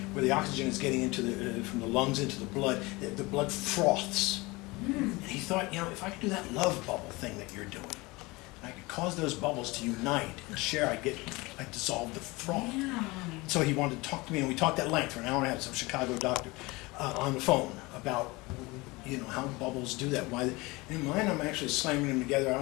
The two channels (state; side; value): quieter; right; 23.3 dB